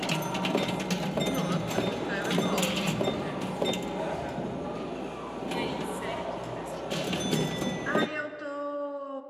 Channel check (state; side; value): identical; both; correlation 1.00